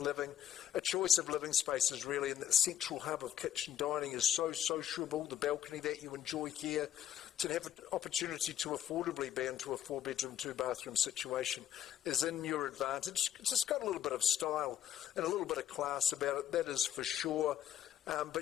A choice of living spaces, really, and that central hub of kitchen dining is so sociable. The balcony that you enjoy here, to have an opportunity to affordably be into a 4-bedroom, 2-bathroom situation is in your advantage. It's just got a little bit of style and a little bit of class about it, that is for sure.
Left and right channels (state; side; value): quieter; right; 10.7 dB